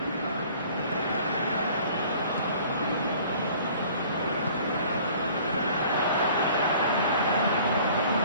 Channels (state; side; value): inverted; both; correlation -0.51